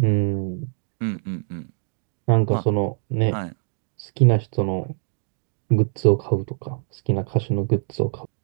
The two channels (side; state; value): left; silent; 63 dB below the other